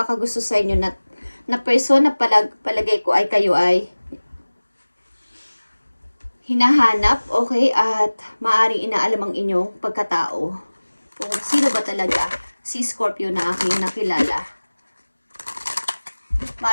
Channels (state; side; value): inverted; both; correlation -1.00